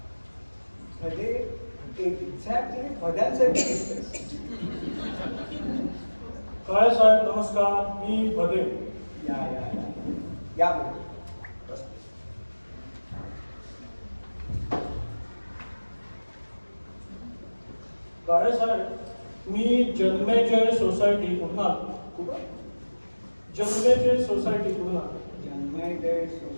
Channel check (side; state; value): both; inverted; correlation -1.00